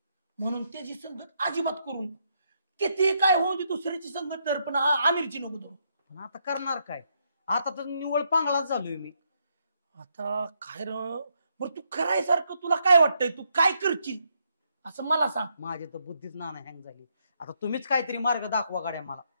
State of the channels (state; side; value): inverted; both; correlation -0.77